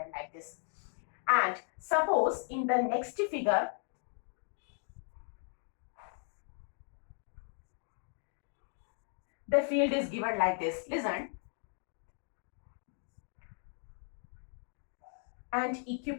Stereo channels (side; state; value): right; silent; 53 dB below the other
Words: like this. And suppose in the next figure, the field is given like this. Listen. And